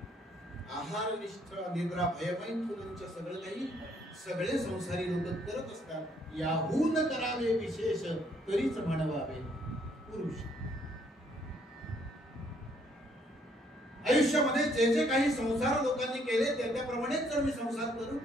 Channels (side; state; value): both; normal; correlation 0.68